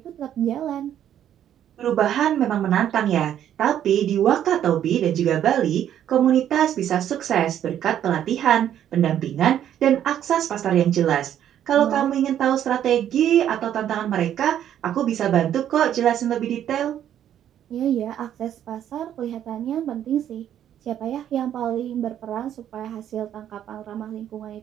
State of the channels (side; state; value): left; quieter; 10.5 dB